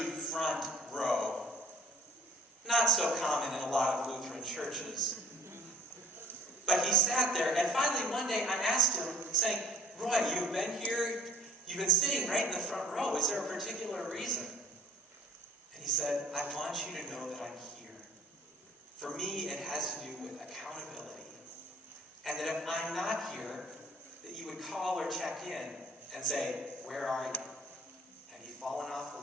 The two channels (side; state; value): both; normal; correlation 0.54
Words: front row. Not so common in a lot of Lutheran churches. But he sat there, and finally one day I asked him, saying, Roy, you've been here, you've been sitting right in the front row. Is there a particular reason? And he said, I want you to know that I'm here. For me, it has to do with accountability. And that if I'm not here, that you would call or check in and say, where are you? Have you fallen off